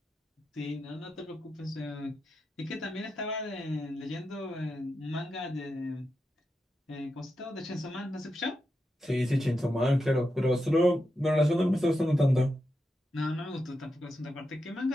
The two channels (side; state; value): both; normal; correlation 0.87